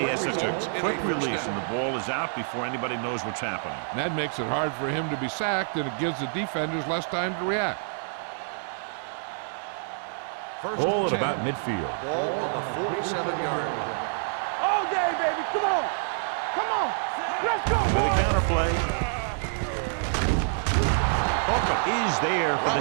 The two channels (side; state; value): left; silent; digital silence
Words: has such a quick release, and the ball is out before anybody knows what's happening. And that makes it hard for him to be sacked, and it gives the defenders less time to react. Ball at about midfield. Ball on the 47-yard line. All day, baby. Come on. Come on. Let's go. With a counter play. Hooker is there for